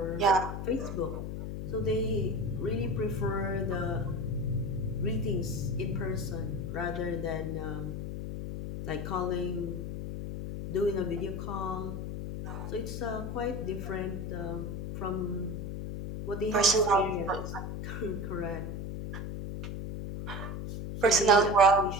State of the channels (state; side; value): noise; left; hum, 5 dB below the sound